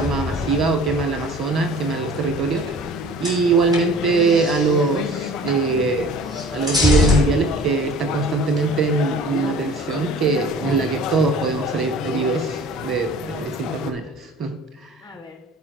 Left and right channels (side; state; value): both; normal; correlation 0.46